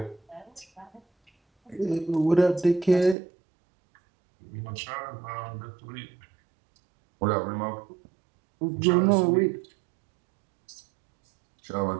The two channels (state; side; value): drops out; left; at 3.2 s